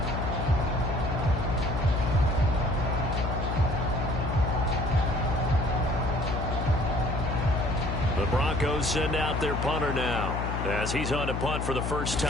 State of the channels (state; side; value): noise; left; hum, 2 dB below the sound